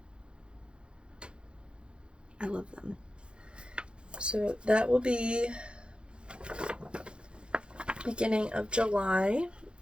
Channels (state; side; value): late; left; 0.055 ms